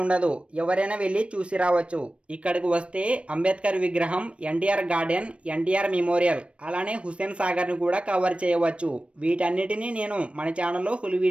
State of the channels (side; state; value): left; late; 0.060 ms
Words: ఉండదు, ఎవరైనా వెళ్ళి చూసి రావచ్చు. ఇక్కడికి వస్తే అంబేద్కర్ విగ్రహం, ఎన్టీఆర్ గార్డెన్, ఎన్టీఆర్ మెమోరియల్, అలానే హుస్సేన్ సాగర్ ని కూడా కవర్ చేయవచ్చు. వీటన్నిటిని నేను మన ఛానల్లో ఫుల్